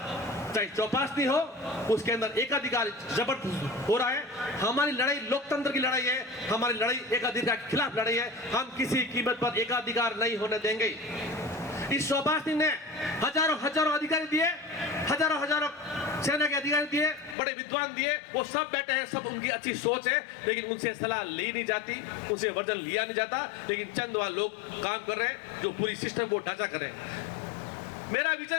चाहे चौपाशनी हो, उसके अंदर एकाधिकार जबरदस्त हो रहा है। हमारी लड़ाई लोकतंत्र की लड़ाई है, हमारी लड़ाई एकाधिकार के खिलाफ लड़ाई है। हम किसी कीमत पर एकाधिकार नहीं होने देंगे। इस चौपाशनी ने हजारों अधिकारी दिए, हजारों सेना के अधिकारी दिए, बड़े विद्वान दिए, वो सब बैठे हैं, सब उनकी अच्छी सोच है, लेकिन उनसे सलाह ली नहीं जाती, उनसे वर्जन लिया नहीं जाता। लेकिन चंद वहां लोग काम कर रहे हैं जो पूरी सिस्टम को ढांचा कर रहे हैं। मेरा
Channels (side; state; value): right; drops out; at 17.4 s